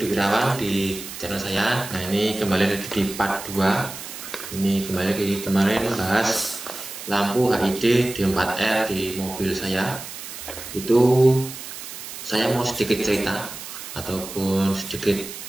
Irawan di channel saya. Nah, ini kembali lagi di part 2. Ini kembali lagi kemarin bahas lampu HID D4R di mobil saya. Itu saya mau sedikit cerita ataupun sedikit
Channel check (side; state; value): right; noise; hiss, 11 dB below the sound